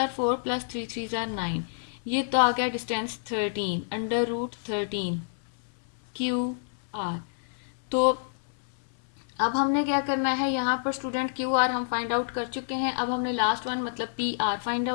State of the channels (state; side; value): silent; right; 59 dB below the other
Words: 4 प्लस 3 3 जार 9। ये तो आ गया डिस्टेंस 13 √13 क्यू आर। तो अब हमने क्या करना है, यहाँ पर स्टूडेंट क्यू आर हम फाइंड आउट कर चुके हैं। अब हमने लास्ट वन मतलब पी आर फाइंड